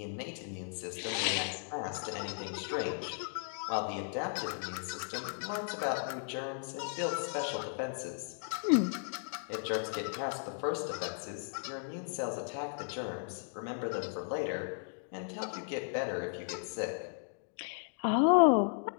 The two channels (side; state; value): right; silent; digital silence